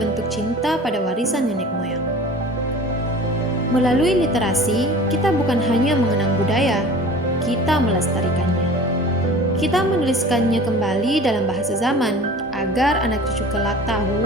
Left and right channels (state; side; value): normal; both; correlation 0.41